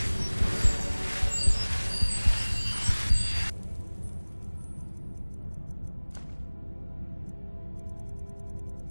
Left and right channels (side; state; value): both; inverted; correlation -1.00